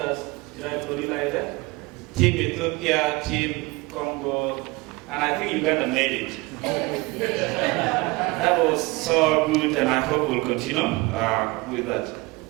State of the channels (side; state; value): left; quieter; 23.7 dB